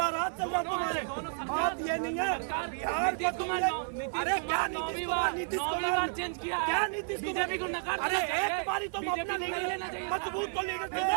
रात चल रहा तुम्हारे। बात ये नहीं है बिहार को अरे क्या नीतीश कुमार चेंज किया, क्या नीतीश बीजेपी को नकार अरे एक बारी तो अपना लीडर मजबूत तो लीडर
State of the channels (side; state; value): left; silent; 57 dB below the other